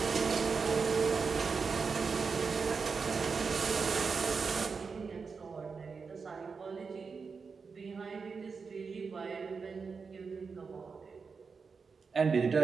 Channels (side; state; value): left; quieter; 5.2 dB